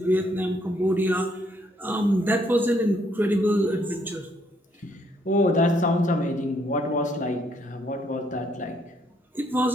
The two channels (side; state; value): both; normal; correlation 0.70